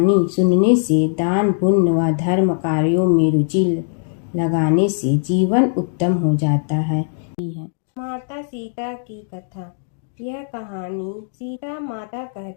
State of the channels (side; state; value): right; silent; digital silence